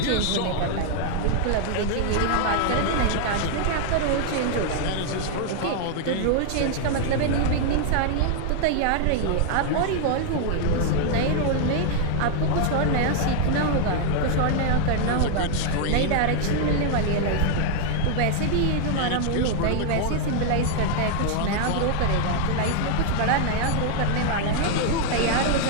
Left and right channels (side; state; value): both; different; correlation 0.00